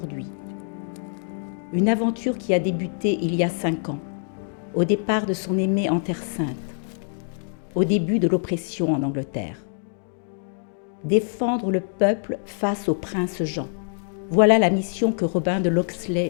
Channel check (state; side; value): silent; right; digital silence